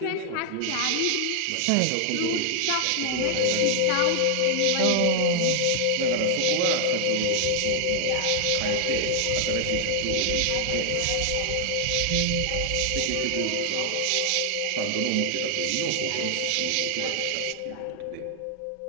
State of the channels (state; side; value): different; both; correlation 0.00